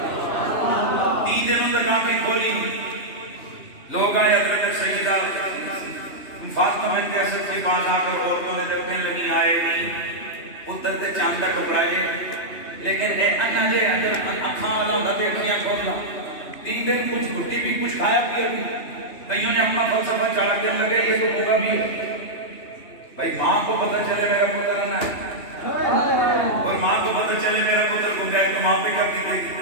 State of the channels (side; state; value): right; late; 2.9 ms